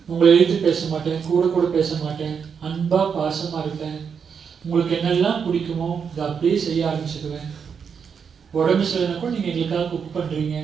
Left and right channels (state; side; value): quieter; left; 6.6 dB